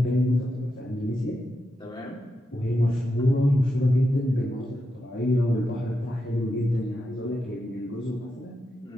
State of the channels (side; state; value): both; normal; correlation 0.86